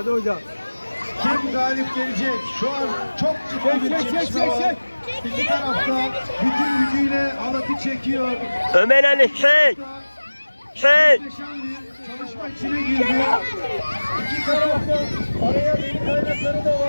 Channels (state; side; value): inverted; both; correlation -1.00